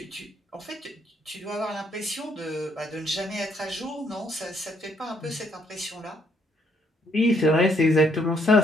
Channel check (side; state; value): both; normal; correlation 0.69